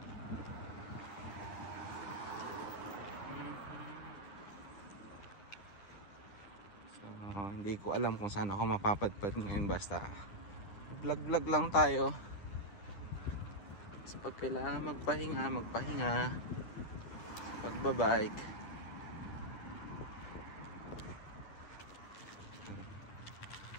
Hindi ko alam kung saan ako mapapadpad ngayon, basta vlog lang tayo. So pag kailangan magpahinga sa pagbabike.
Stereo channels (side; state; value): right; late; 9.7 ms